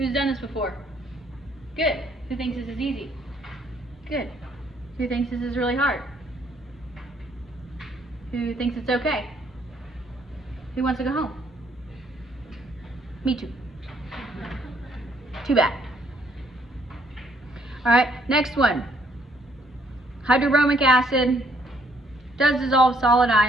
done this before? Good. Who thinks this is easy? Good. Who thinks this is really hard? Who thinks it's okay? Who wants to go home? Me too. Too bad. All right, next one. Hydrobromic acid does dissolve solid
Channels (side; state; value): both; normal; correlation 0.67